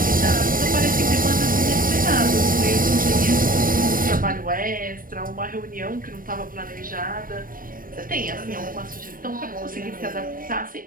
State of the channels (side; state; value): left; late; 0.41 ms